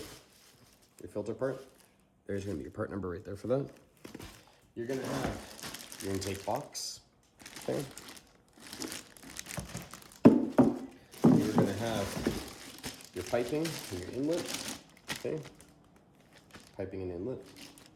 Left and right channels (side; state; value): both; identical; correlation 1.00